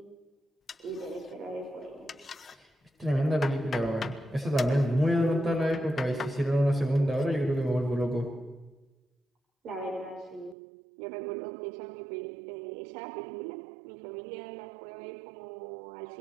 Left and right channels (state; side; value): drops out; left; at 10.6 s